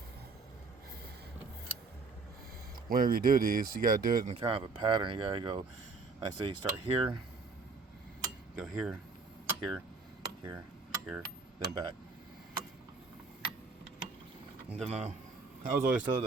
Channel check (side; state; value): left; quieter; 4.2 dB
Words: Whenever you do these, you gotta do it in kind of a pattern. You gotta go, I say, you start here, go here, here, here, here, then back. And then I was always told